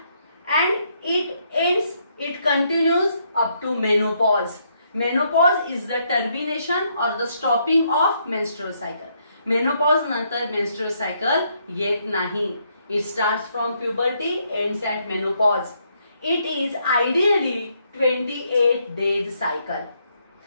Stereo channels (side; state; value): both; inverted; correlation -0.74